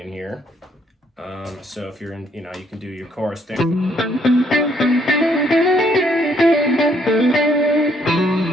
here. So if you're in, you can do your chorus thing.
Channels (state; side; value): normal; both; correlation 0.68